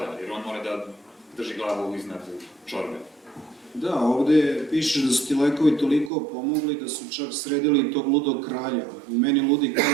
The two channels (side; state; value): left; drops out; at 6.1 s